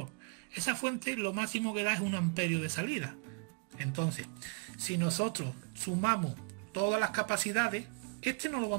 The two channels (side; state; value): left; quieter; 35.5 dB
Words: Esa fuente lo máximo que da es 1 amperio de salida. Entonces, si nosotros sumamos todas las capacidades, este no lo